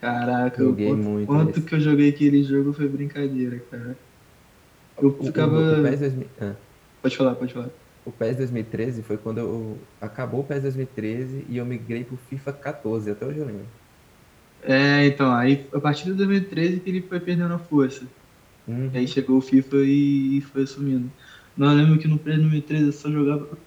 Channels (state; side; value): identical; both; correlation 1.00